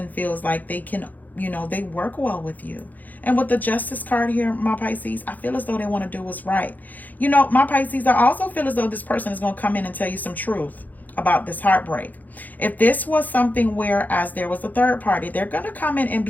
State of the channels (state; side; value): late; right; 0.082 ms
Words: feels like they can, you know, they work well with you. And with the Justice card here, my Pisces, I feel as though they want to do what's right. You know, my Pisces, I also feel as though this person is going to come in and tell you some truth about this heartbreak. If this was something where as there was a third party, they're going to come in and